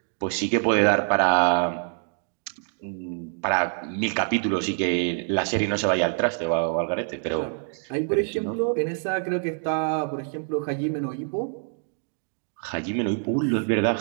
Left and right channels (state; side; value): silent; left; 59 dB below the other